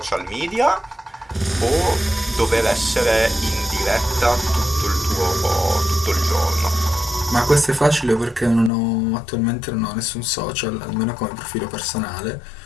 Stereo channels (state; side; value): drops out; right; at 8.7 s